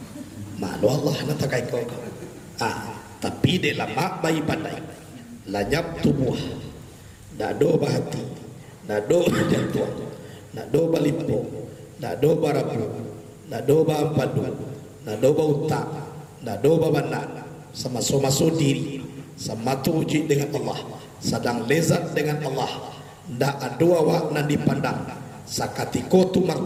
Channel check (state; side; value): identical; both; correlation 1.00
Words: Malu Allah natakai ko. Tapi de lama bayi pandai. Lanyap tubuh. Dado bahati. Dado jantung. Nado balimpo, nado barapu, nado bampadu, nado bauta, nado babana, sama so diri, sama tuji dengan Allah, sedang lezat dengan Allah, ndak adua wak nan dipandang, sakatiko tu